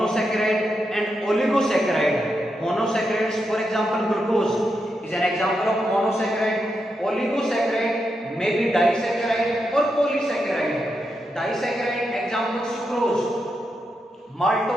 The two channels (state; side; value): normal; both; correlation 0.85